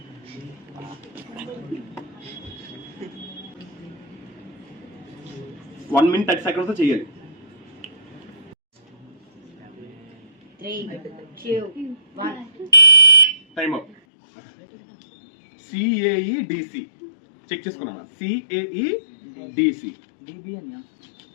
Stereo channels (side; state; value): right; drops out; at 14.0 s